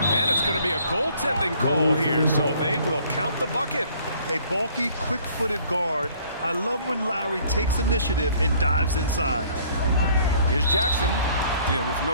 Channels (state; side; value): inverted; both; correlation -0.58